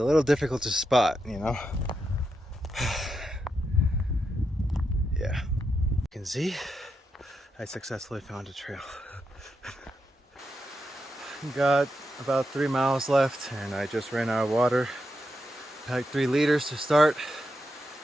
little difficult to spot, you know? Yeah. You can see, I successfully found a trail. Got about 3 miles left, and I just ran out of water. Packed 3 liters to start,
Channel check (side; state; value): both; normal; correlation 0.85